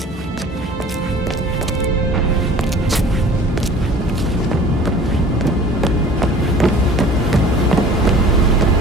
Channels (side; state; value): both; normal; correlation 0.46